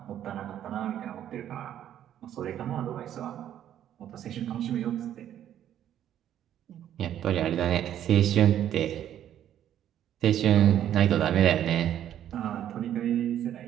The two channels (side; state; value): left; quieter; 10.8 dB